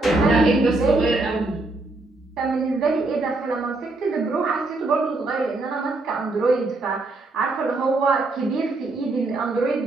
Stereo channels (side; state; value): left; quieter; 3.1 dB